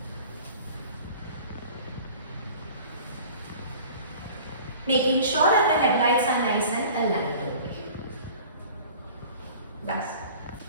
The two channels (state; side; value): inverted; both; correlation -0.44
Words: Making sure that the headlights are nice and aligned over here. That's